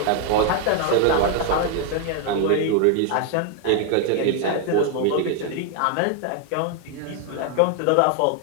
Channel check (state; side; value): different; both; correlation 0.00